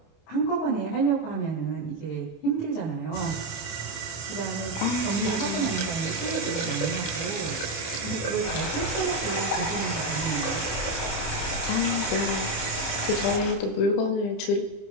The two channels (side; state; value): right; late; 28 ms